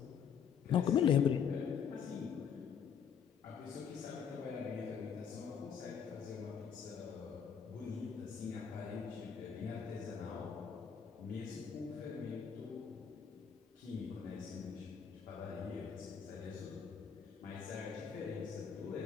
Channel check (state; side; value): quieter; right; 7.4 dB